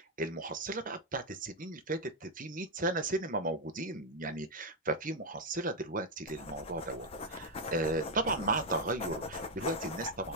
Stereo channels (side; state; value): both; normal; correlation 0.04